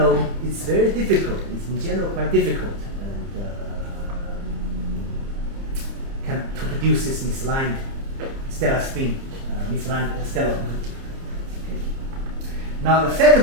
very difficult. It's in general quite difficult, and to produce this misaligned stellar spin, misaligned stellar obliquity. Okay. Now the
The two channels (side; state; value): left; late; 30 ms